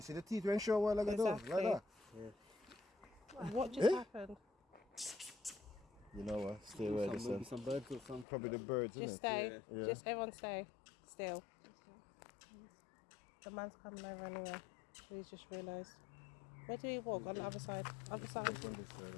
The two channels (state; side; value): drops out; right; at 8.2 s